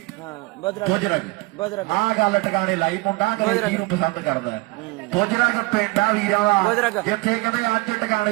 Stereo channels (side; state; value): left; quieter; 23.2 dB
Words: ਬੁਜ਼ਰਗ ਆ ਗੱਲ ਟਿਕਾਣੇ ਲਾਈ ਮੁੰਡਾ ਅੰਗਰੇਜ਼ੀ ਨੂੰ ਪਸੰਦ ਕਰਦਾ। ਬੁਜ਼ਰਗ ਪਿੰਡਾ ਵੀਰਾਂ ਦਾ ਜਿੱਥੇ ਕਹਿੰਦੇ ਅੱਜ